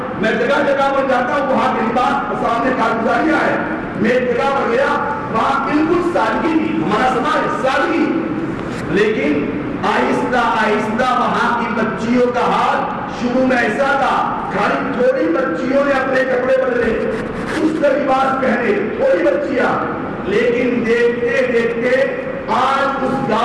میں جگہ جگہ پر جاتا ہوں, وہاں کے لباس سامنے کارگزاریاں ہے. میں ایک جگہ پر گیا, وہاں بالکل سادگی تھی, ہمارا سماج سادگی, لیکن آہستہ آہستہ وہاں کی بچیوں کا حال شروع میں ایسا تھا, خالی تھوڑی بچیوں نے اپنے کپڑے بدلے, اس کا لباس پہنے, تھوڑی بچیاں, لیکن دیکھتے دیکھتے آج اس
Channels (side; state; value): both; identical; correlation 1.00